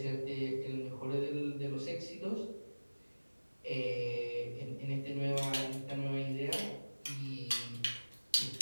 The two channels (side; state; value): both; inverted; correlation -1.00